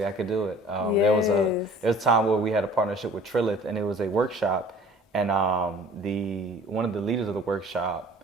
I could do it. There was a time where we had a partnership with Trilith, and it was a workshop, and one of the leaders of the workshop,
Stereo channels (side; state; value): both; normal; correlation 0.49